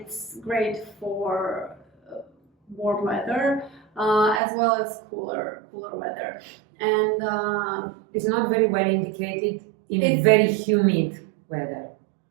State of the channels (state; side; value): drops out; left; at 4.4 s